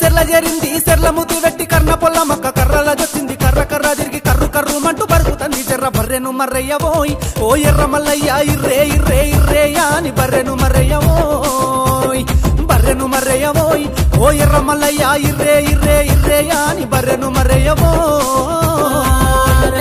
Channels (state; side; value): identical; both; correlation 1.00